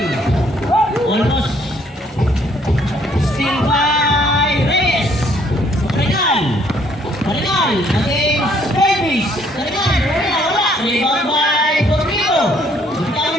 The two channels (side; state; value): both; normal; correlation 0.65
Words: Almost. Still by Reyes. Arenal. Arenal against Davis. Arenal. Wala. Rebound by Dormido.